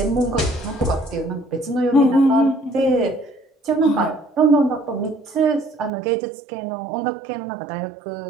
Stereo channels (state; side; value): drops out; left; at 5.9 s